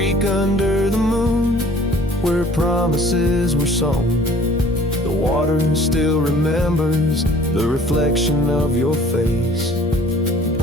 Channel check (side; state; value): both; normal; correlation 0.52